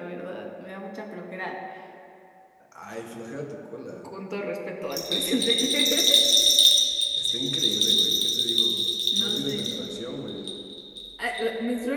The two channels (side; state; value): both; identical; correlation 1.00